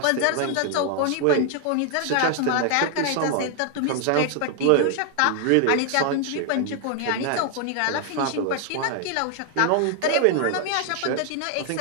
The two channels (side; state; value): both; different; correlation 0.00